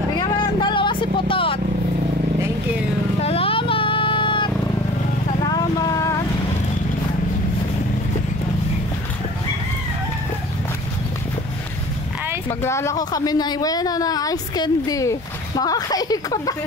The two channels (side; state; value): both; normal; correlation 0.44